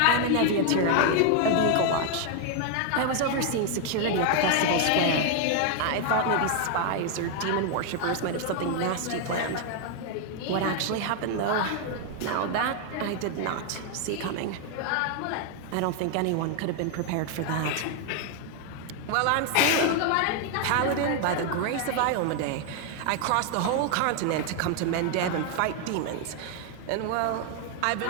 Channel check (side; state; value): both; different; correlation 0.00